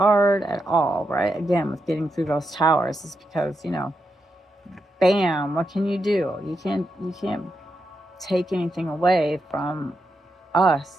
at all, right? Again, with getting through those towers, is because, bam, what can you do? You can't take anything away from us.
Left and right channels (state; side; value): normal; both; correlation 0.85